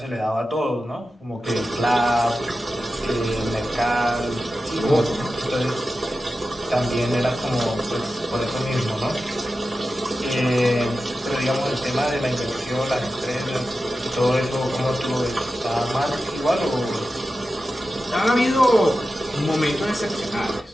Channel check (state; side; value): normal; both; correlation 0.93